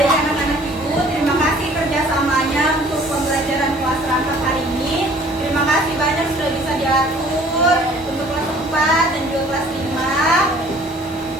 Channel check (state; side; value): normal; both; correlation 0.53